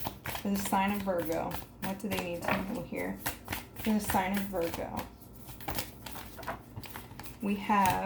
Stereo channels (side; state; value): both; identical; correlation 1.00